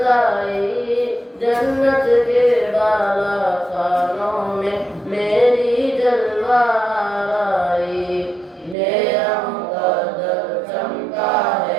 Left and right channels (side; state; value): left; drops out; at 8.8 s